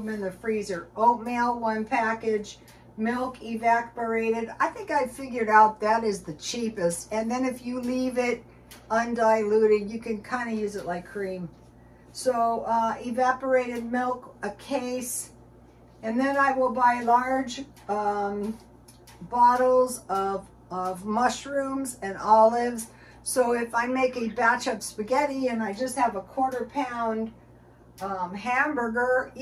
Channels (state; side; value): identical; both; correlation 1.00